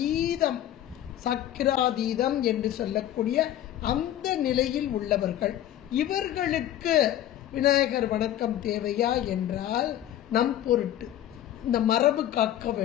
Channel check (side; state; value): right; quieter; 12.1 dB